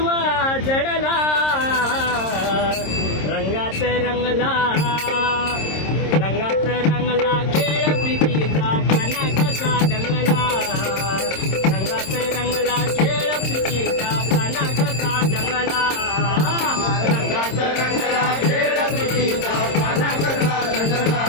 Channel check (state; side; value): late; right; 26 ms